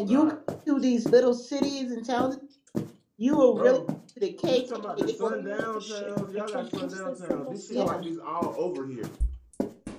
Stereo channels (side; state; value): both; identical; correlation 1.00